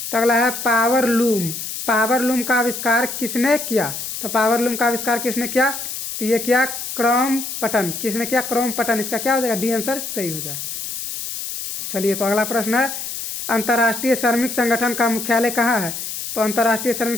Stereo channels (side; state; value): left; noise; hiss, 6 dB below the sound